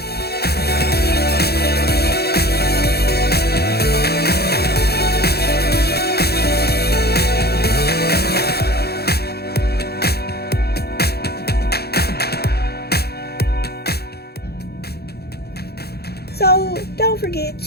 so don't forget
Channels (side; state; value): right; late; 0.46 ms